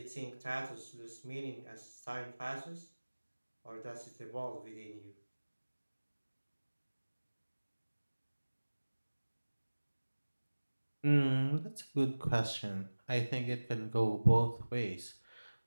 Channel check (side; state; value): both; inverted; correlation -1.00